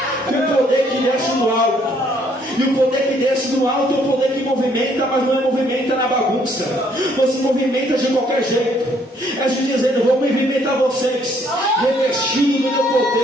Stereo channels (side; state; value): both; normal; correlation 0.66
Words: com o poder que desce do alto. E o poder que desce do alto é o poder que movimenta, mas não é movimenta na bagunça. Você movimenta de qualquer jeito. É Jesus dizendo, vou movimentar vocês, revestido no meu